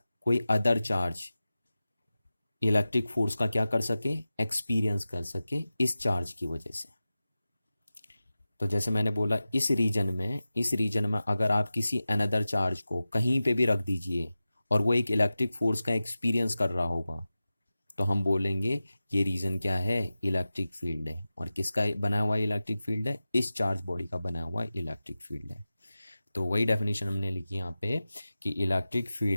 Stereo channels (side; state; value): both; inverted; correlation -0.94